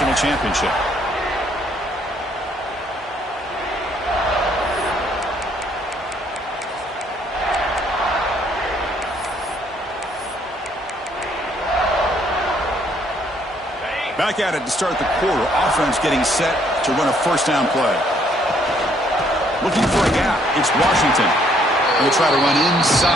championship. Back at it to start the quarter. Offense getting set to run a first down play. Looking for a gap. It's Washington. Going to try to run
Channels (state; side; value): normal; both; correlation 0.67